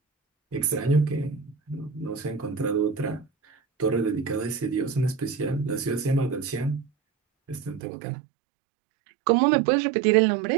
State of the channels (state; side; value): drops out; left; at 7.8 s